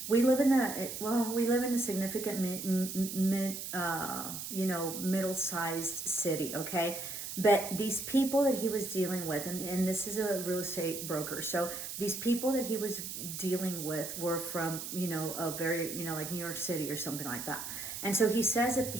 we live in a significant middle-sized city. Okay, but these people that he was dealing with, and this is a real estate broker, so these people that he was dealing with were from a very like New York City or something like that. And so he says that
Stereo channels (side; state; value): right; noise; hiss, 7 dB below the sound